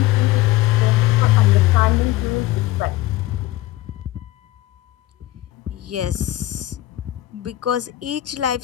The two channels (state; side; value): quieter; right; 16.2 dB